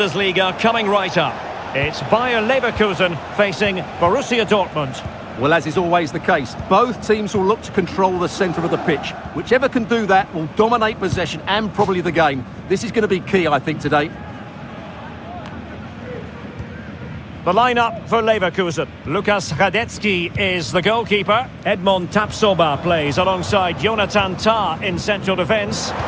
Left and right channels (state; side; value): identical; both; correlation 1.00